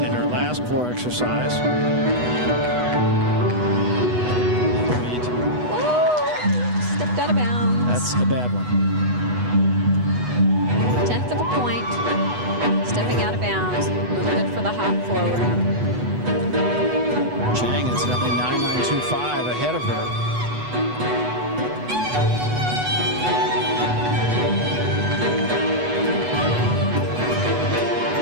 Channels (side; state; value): left; late; 8.1 ms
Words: in her last floor exercise. Stepped out of bounds. That's a bad one. 1/10 of a point. Stepping out of bounds. Look good for the hop forward. Chang incidentally 9.925 ahead of her.